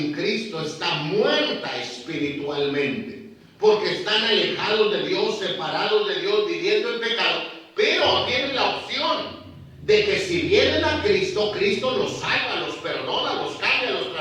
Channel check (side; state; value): both; identical; correlation 1.00